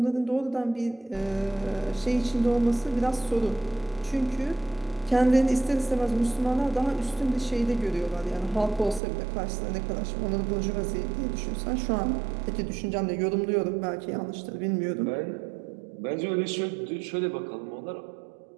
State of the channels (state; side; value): drops out; left; at 9.0 s